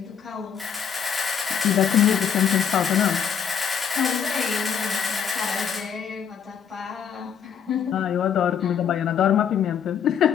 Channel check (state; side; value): quieter; right; 7.8 dB